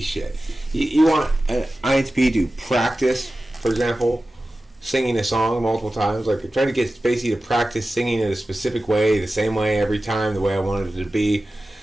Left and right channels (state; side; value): normal; both; correlation 0.95